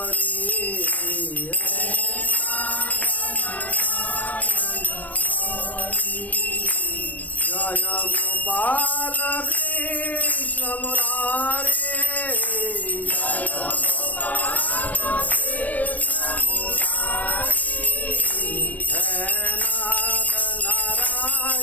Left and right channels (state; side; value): late; right; 0.076 ms